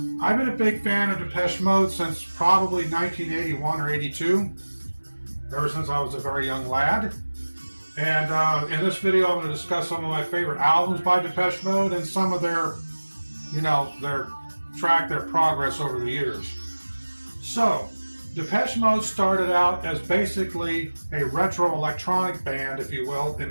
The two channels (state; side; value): inverted; both; correlation -1.00